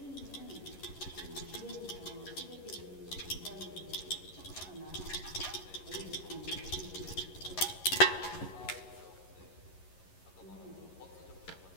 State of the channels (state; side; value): late; right; 11 ms